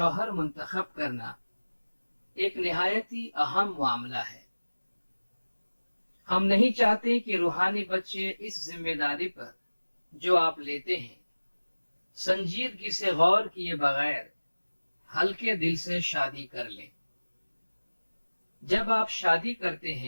منتخب کرنا ایک نہایت ہی اہم معاملہ ہے۔ ہم نہیں چاہتے کہ روحانی بچے اس ذمہ داری پر جو آپ لیتے ہیں سنجیدگی سے غور کیے بغیر ہلکے دل سے شادی کر لیں۔ جب آپ شادی کرتے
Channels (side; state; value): both; inverted; correlation -1.00